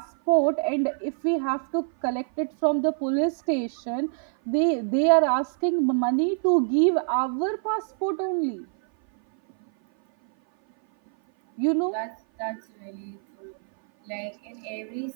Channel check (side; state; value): left; silent; 57 dB below the other